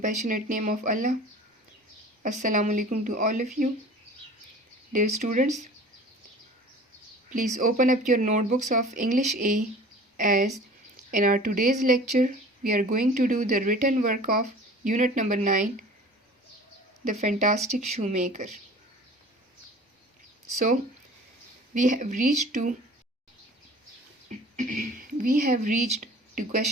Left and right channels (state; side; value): normal; both; correlation 0.44